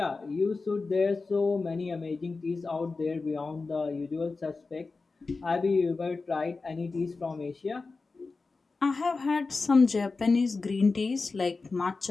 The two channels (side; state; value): right; quieter; 4.0 dB